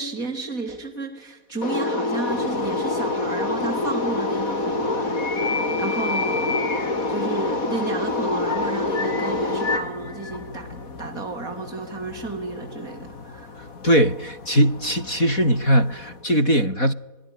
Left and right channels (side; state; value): right; late; 4.1 ms